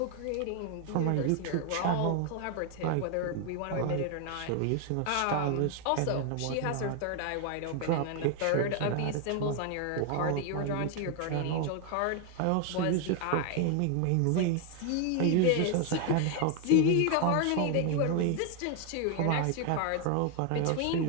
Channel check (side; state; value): both; different; correlation 0.00